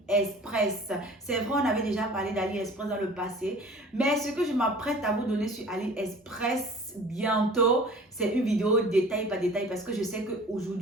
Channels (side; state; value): both; normal; correlation 0.45